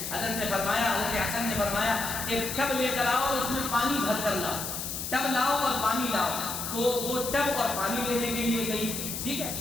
حضرت نے فرمایا، حضرت حسن نے فرمایا ایک ٹب لے کر آؤ اور اس میں پانی بھر کر لاؤ، ٹب لاؤ اور پانی لاؤ۔ تو وہ ٹب اور پانی لینے کے لیے گئی، ٹھیک ہے۔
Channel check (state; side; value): noise; left; hiss, 5 dB below the sound